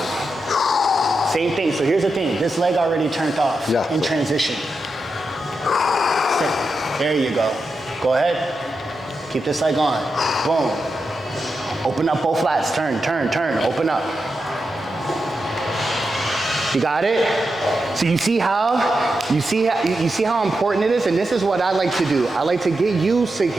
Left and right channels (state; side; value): normal; both; correlation 0.88